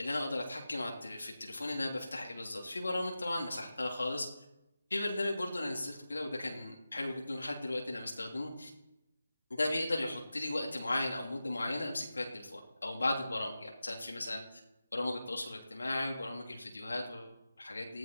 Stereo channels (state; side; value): inverted; both; correlation -0.93